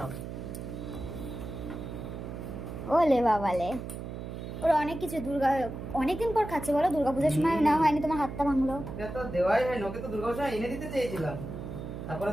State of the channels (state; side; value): noise; right; hum, 8 dB below the sound